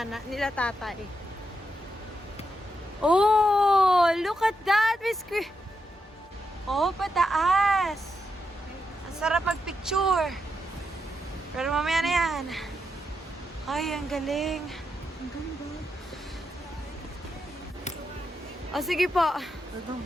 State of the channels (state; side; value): normal; both; correlation 0.84